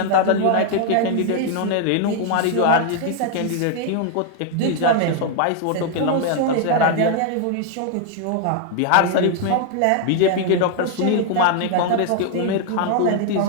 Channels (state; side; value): different; both; correlation 0.00